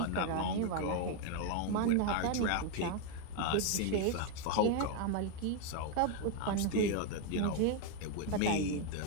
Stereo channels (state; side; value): different; both; correlation 0.01